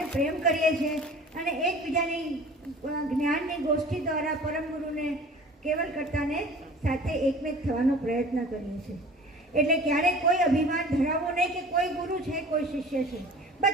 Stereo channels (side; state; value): both; normal; correlation 0.43